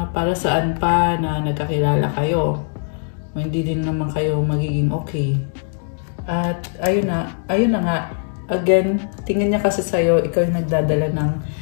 para saan pa na nagkakilala kayo. O hindi din naman kayo magiging okay. At ayun na nga. Again, tingin niya kasi sa'yo, ikaw yung nagdadala ng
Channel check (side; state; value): right; silent; digital silence